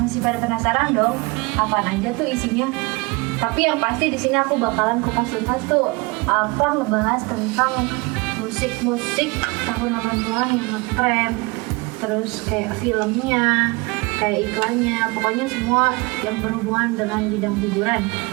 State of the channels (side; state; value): left; quieter; 27.1 dB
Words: pada penasaran dong apaan aja tuh isinya? Tapi yang pasti di sini aku bakalan kupas tuntas tuh ngebahas tentang musik-musik tahun 80-an yang ngetren, terus kayak filmnya, kayak iklannya, pokoknya semua yang berhubungan dengan bidang hiburan